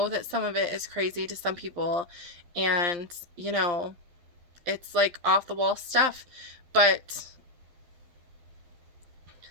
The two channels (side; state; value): left; late; 11 ms